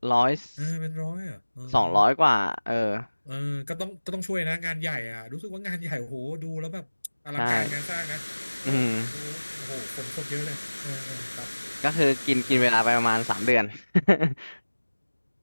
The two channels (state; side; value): inverted; both; correlation -1.00